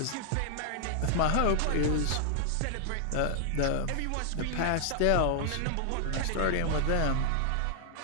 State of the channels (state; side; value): different; both; correlation 0.00